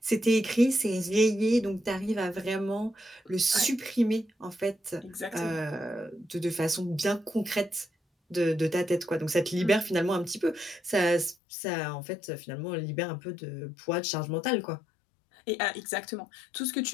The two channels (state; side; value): drops out; right; at 11.4 s